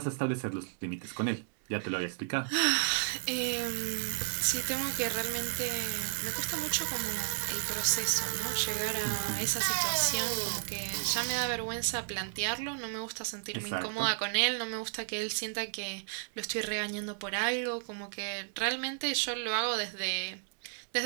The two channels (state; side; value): silent; left; digital silence